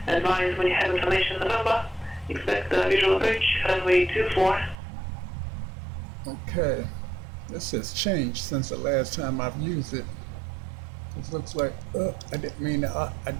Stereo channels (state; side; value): drops out; left; at 4.8 s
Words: Advise when you have information on the number. Expect the visual approach runway 24. Okay, this has changed since the last time I've used it. It looks like I didn't mean to